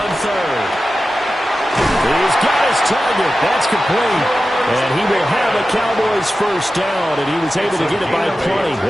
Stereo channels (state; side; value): normal; both; correlation 0.93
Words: on third. He's got his target. That's complete. And he will have a Cowboys first down, and he was able to get it by plenty.